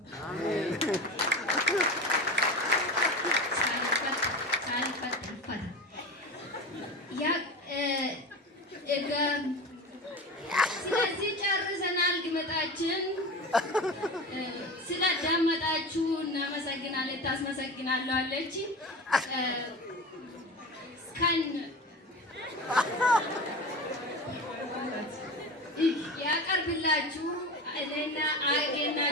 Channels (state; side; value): normal; both; correlation 0.29